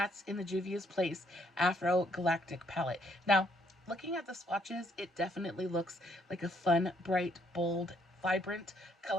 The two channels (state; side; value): normal; both; correlation 0.69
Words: in the Juvia's Place AfroGalactic palette. Now, looking at the swatches, it definitely looks like a fun, bright, bold, vibrant